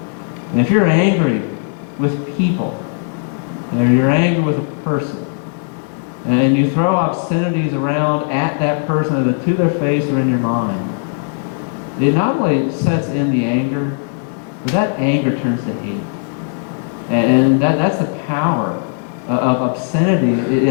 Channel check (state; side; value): silent; right; 60 dB below the other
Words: And if you're angry with people, or you're angry with a person, and you throw obscenities around at that person, either to their face or in your mind, it not only sets in the anger, but that anger turns to hate. And that's the power of obscenity